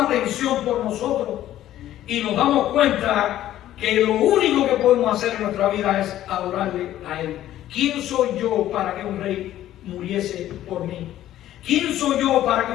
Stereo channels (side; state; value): right; quieter; 13.0 dB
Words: por nosotros, y nos damos cuenta que lo único que podemos hacer en nuestra vida es adorarle a Él. ¿Quién soy yo para que un rey muriese por mí? ¿Quién soy yo para que